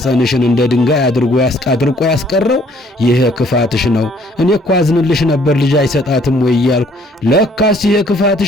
እንደ ድንጋይ አድርጎ ያስቀረው ይሄ ክፋትሽ ነው። እኔ እኮ አዝንልሽ ነበር ልጅ አይሰጣትም ወይ እያልኩ፣ ለካስ ይሄ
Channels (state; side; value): normal; both; correlation 0.62